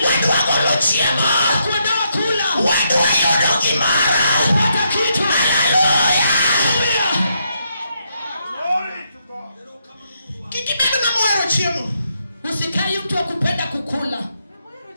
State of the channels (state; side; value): inverted; both; correlation -0.78